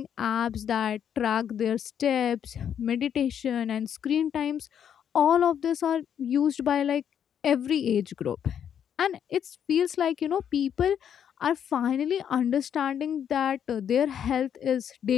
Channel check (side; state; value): right; quieter; 8.8 dB